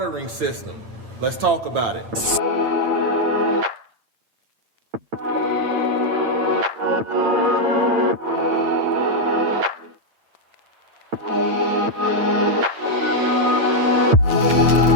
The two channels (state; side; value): late; left; 8.8 ms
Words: system. Let's talk about it.